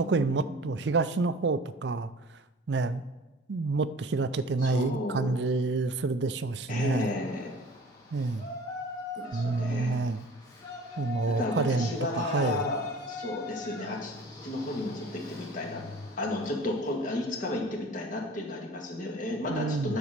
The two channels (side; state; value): both; normal; correlation 0.45